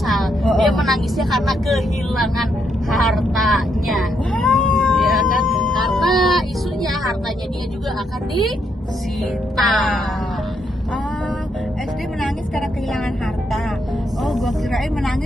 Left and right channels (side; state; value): both; normal; correlation 0.77